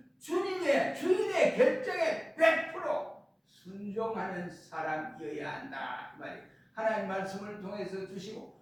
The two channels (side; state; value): both; identical; correlation 1.00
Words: 주인의 결정에 100% 순종하는 사람이어야 한다 이 말이에요. 하나님 말씀을 통해서 주시고